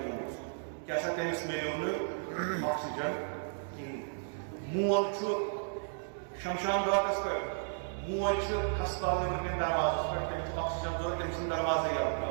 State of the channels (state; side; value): silent; left; digital silence